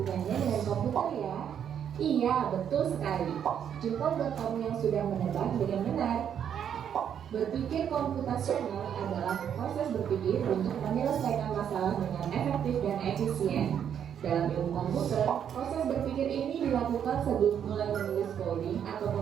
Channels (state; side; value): quieter; left; 8.8 dB